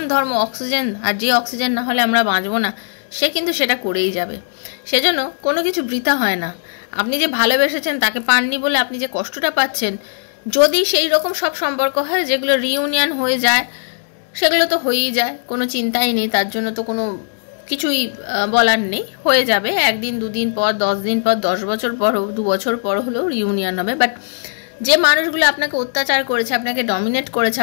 ধর্ম অক্সিজেন, আর যে অক্সিজেন না হলে আমরা বাঁচবো না, সে কিন্তু সেটা করেই যাবে। সেজন্য কোনো কিছু বৃথা হয় না। আপনি যে ভালোবেসেছেন তাকে পাননি বলে আপনি যে কষ্টটা পাচ্ছেন, যদি সেই রকম সব সম্পর্ক হয় যেগুলো রিইউনিয়ন হয়ে যায়, সেগুলো তো হয়েই যায়, কোনো চিন্তাই নেই, তার জন্য তো কোনো কিছুই বলার নেই, হয়ে যাবে। একদিন, দুদিন পর, 10 দিন পর, 10 বছর পর, 2 বছর পর হলেও রিইউনিয়ন হবে। বাট যে মানুষগুলো আপনাকে অত্যাচার করেছে, আপনাকে ডমিনেট করেছে,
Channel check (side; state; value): right; silent; digital silence